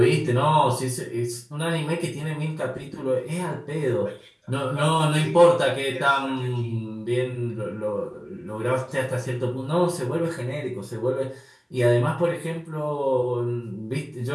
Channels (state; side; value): identical; both; correlation 1.00